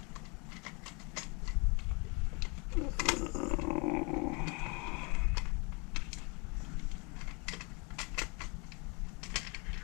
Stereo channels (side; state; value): right; quieter; 31.1 dB